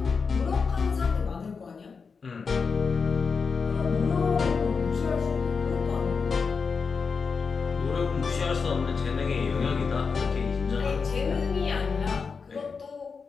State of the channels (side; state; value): right; quieter; 5.2 dB